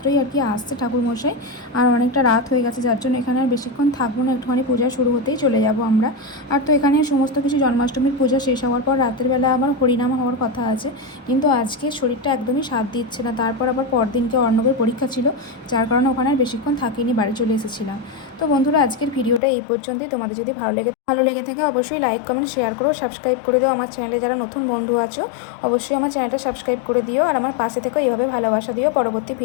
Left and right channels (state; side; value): drops out; right; at 19.4 s